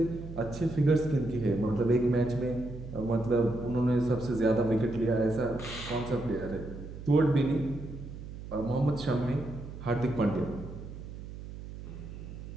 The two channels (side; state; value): right; noise; hum, 11 dB below the sound